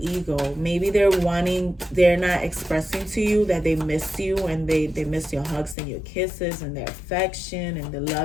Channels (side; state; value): right; drops out; at 5.8 s